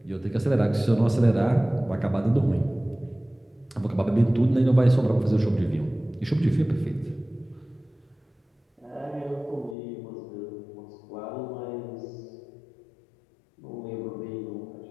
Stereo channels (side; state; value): right; drops out; at 9.8 s